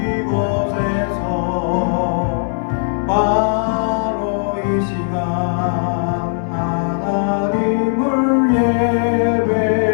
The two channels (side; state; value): right; silent; 67 dB below the other